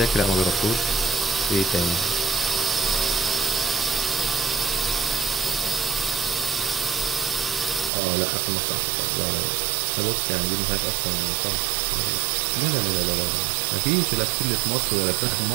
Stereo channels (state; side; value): drops out; left; at 7.9 s